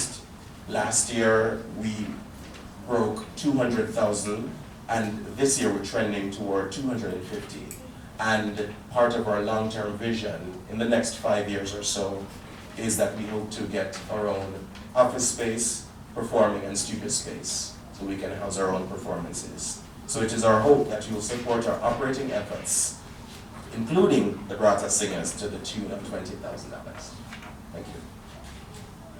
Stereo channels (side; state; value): both; identical; correlation 1.00